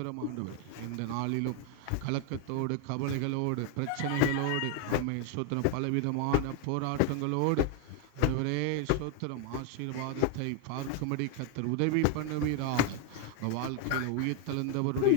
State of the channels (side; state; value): both; different; correlation 0.01